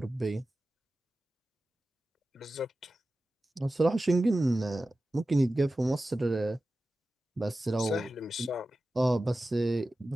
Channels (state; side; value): normal; both; correlation 0.94